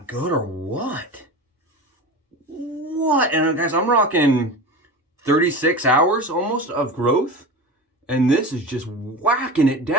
good or what? What? And guys, I'm rocking 36 hours almost of growth, and this is just whacking it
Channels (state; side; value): normal; both; correlation 0.29